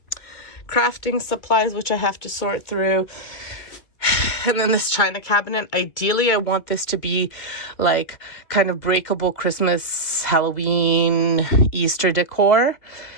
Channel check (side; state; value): right; late; 2.2 ms